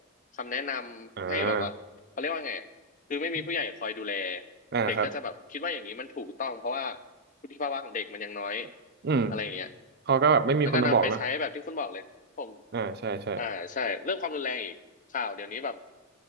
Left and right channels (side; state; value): both; normal; correlation -0.11